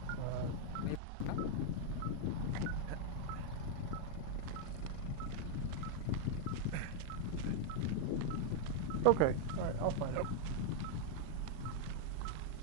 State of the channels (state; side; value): different; both; correlation 0.00